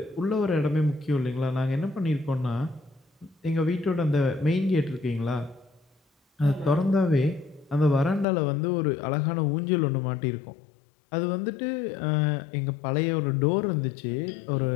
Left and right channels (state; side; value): drops out; right; at 8.2 s